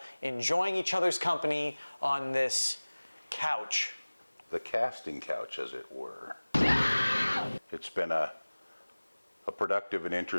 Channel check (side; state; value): both; inverted; correlation -1.00